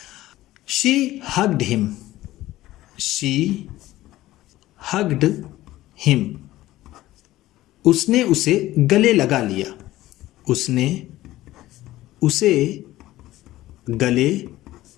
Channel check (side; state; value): right; quieter; 16.0 dB